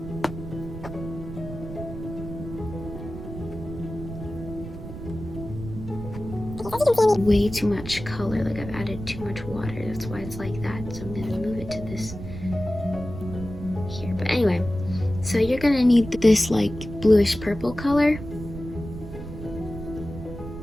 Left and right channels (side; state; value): right; noise; rumble, 10 dB below the sound